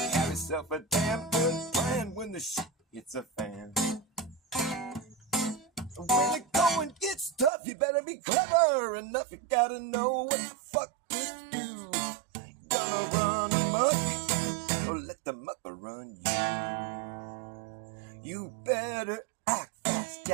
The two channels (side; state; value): left; drops out; at 7.5 s